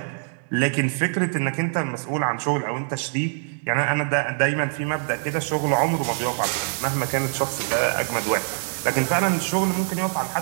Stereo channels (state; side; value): silent; left; digital silence